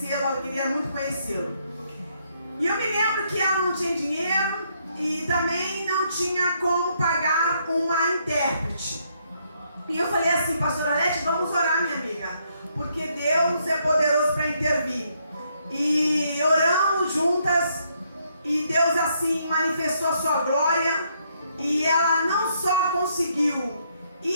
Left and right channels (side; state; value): both; inverted; correlation -0.73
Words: ela queria muito conhecê-lo. E eu me lembro que ela não tinha dinheiro e também não tinha como pagar uma intérprete. E eu falei assim, pastora Lete, vamos orar, minha amiga, porque Deus é poderoso para intervir. E oramos juntas e Deus assim manifestou a sua glória e ela não só conseguiu